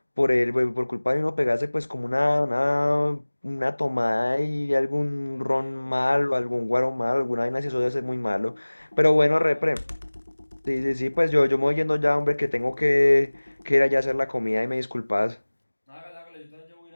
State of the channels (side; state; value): both; inverted; correlation -1.00